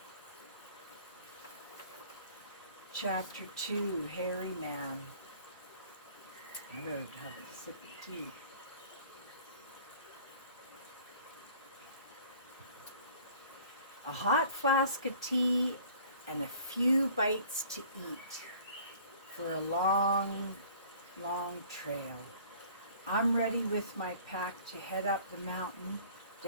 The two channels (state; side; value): inverted; both; correlation -0.51